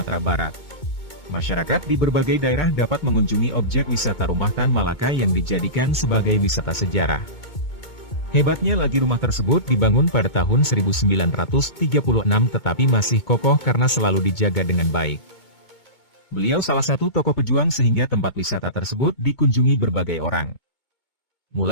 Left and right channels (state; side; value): late; right; 2.2 ms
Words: Barat. Masyarakat di berbagai daerah dapat mengunjungi objek wisata Rumah Tan Malaka yang dijadikan sebagai wisata sejarah. Hebatnya lagi rumah tersebut dibangun pada tahun 1936 tetapi masih kokoh karena selalu dijaga dengan baik. Beliau salah satu tokoh pejuang sehingga tempat wisata tersebut dikunjungi berbagai orang.